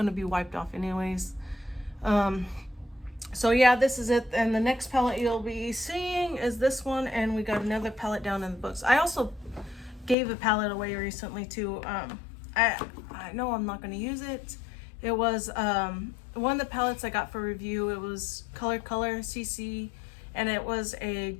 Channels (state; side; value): drops out; right; at 10.2 s